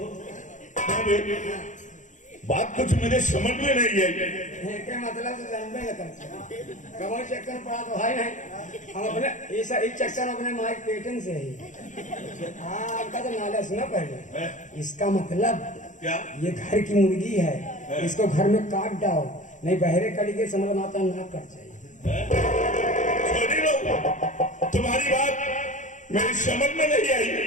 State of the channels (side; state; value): right; late; 0.36 ms